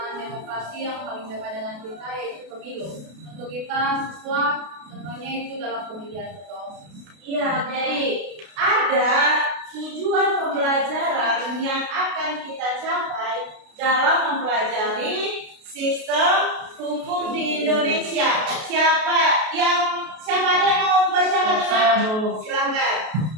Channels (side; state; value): left; late; 32 ms